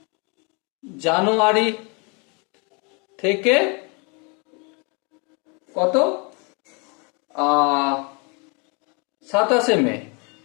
জানুয়ারি থেকে কত? 27 মে,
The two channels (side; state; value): right; quieter; 32.9 dB